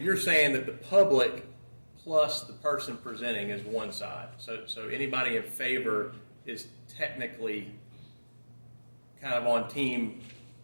saying that the public plus the person presenting is one side. So anybody in favor is technically kind of on team,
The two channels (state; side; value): inverted; both; correlation -1.00